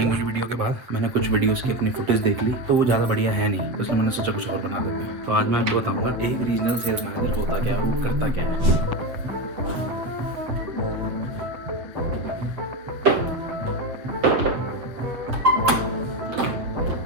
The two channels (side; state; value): left; late; 8.0 ms